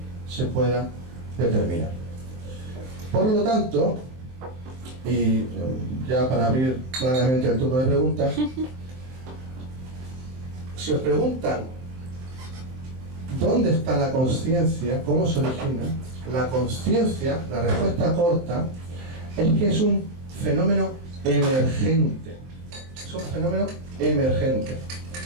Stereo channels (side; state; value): left; late; 23 ms